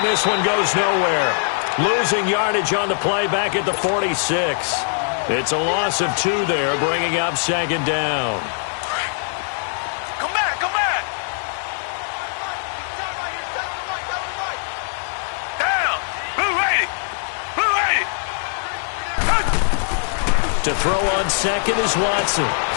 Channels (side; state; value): right; silent; 65 dB below the other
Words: this one goes nowhere. Losing yardage on the play back at the 46. It's a loss of 2 there, bringing up 2nd down. To throw on 2nd is Watson.